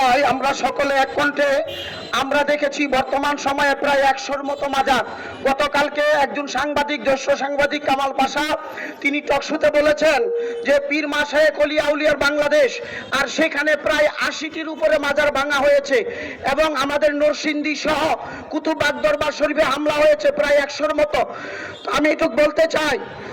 আমরা সকলে এক কণ্ঠে আমরা দেখেছি বর্তমান সময়ে প্রায় 100-র মতো মাজার। গতকালকে একজন সাংবাদিক, জ্যেষ্ঠ সাংবাদিক কামাল পাশা, তিনি টকশোতে বলেছেন যে পীর মাশায়েখ ওলিয়া আউলিয়ার বাংলাদেশ, আর সেখানে প্রায় 80টির উপরে মাজার ভাঙা হয়েছে এবং আমাদের নরসিংদী সহ কুতুববাগ দরবার শরীফে হামলা হয়েছে প্রায় 100-র মতো। তো আমি এটুকু বলতে চাই,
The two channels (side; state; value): both; identical; correlation 1.00